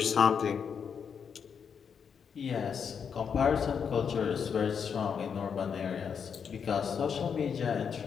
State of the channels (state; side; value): quieter; right; 6.9 dB